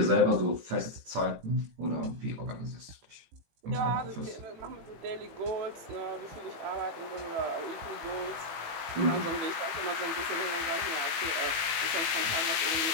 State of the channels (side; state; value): left; late; 18 ms